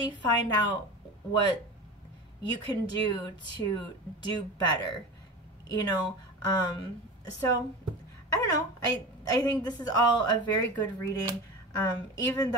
find out what you can do to do better, you know. So I don't know, I think this is all a very good reading, even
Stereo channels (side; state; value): both; normal; correlation 0.30